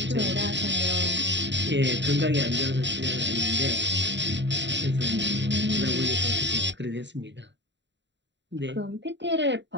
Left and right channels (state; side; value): late; left; 0.52 ms